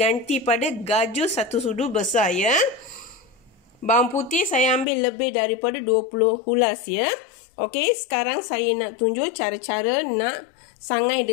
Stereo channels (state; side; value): drops out; right; at 4.9 s